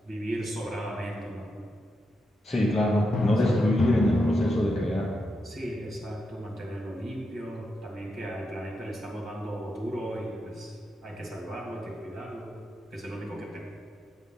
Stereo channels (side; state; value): both; normal; correlation 0.85